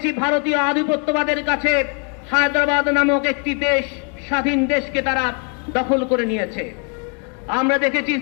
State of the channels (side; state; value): right; quieter; 38.2 dB